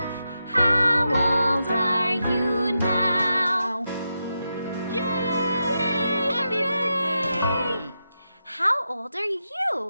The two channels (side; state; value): both; inverted; correlation -0.87